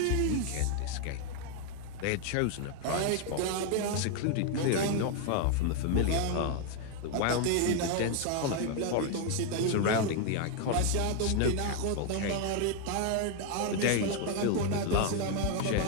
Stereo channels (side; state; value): both; different; correlation 0.01